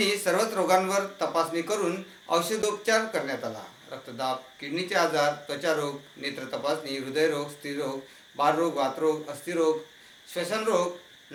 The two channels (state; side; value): identical; both; correlation 1.00